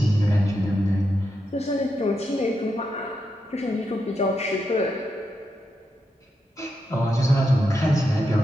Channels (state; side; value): normal; both; correlation 0.85